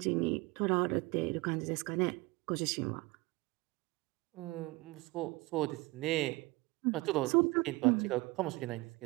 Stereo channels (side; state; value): left; quieter; 22.7 dB